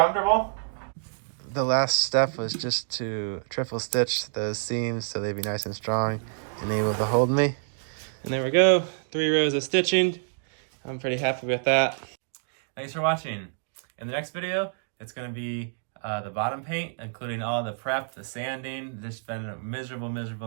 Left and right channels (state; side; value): silent; left; digital silence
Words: The last step was just to triple stitch those seams so they'd be nice and strong and able to hold me. And there we go, 3 rows of stitching. I'm pretty happy with that. Thanks for watching. In the next video, it's gonna be the bottom paint, including all the prep, the sanding. This has been a